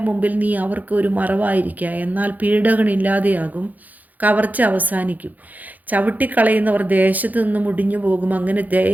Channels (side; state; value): left; late; 0.081 ms